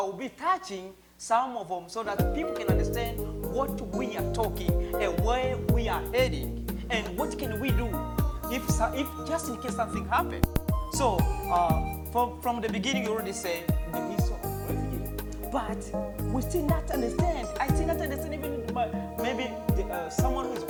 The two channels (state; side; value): identical; both; correlation 1.00